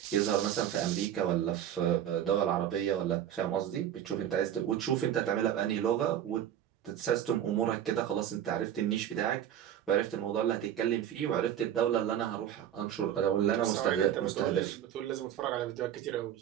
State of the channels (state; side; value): quieter; left; 10.4 dB